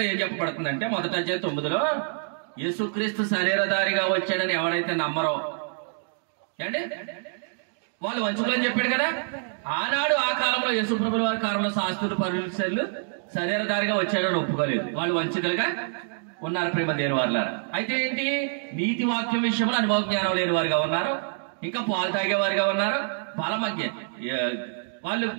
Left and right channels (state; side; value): silent; left; 61 dB below the other